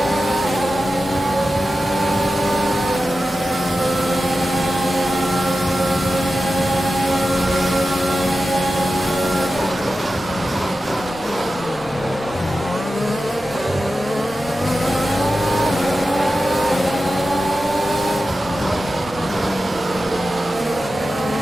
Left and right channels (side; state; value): both; normal; correlation 0.92